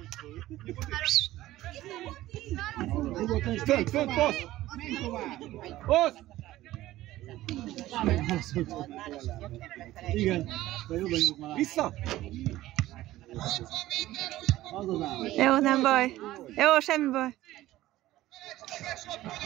Fönt, passz! Passz! Igen, vissza! Jó, nem baj. Jó, semmi baj.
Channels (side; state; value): left; quieter; 15.7 dB